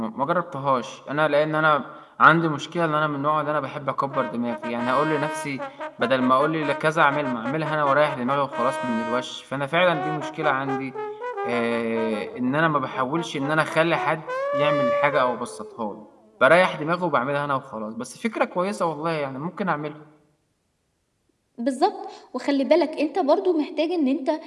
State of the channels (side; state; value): both; identical; correlation 1.00